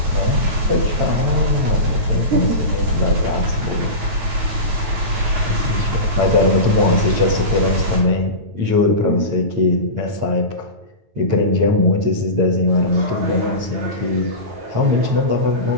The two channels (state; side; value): late; left; 8.8 ms